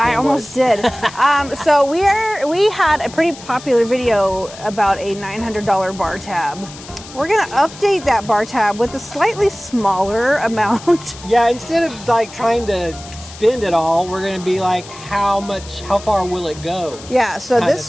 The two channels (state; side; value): noise; left; hiss, 17 dB below the sound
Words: was. I almost did. So we had a pretty popular video about a $900 bar tab. We're gonna update that bar tab with a slightly smaller amount. Yeah, instead of like trying to spend it all, we're gonna be like, how far will it go? Yeah. So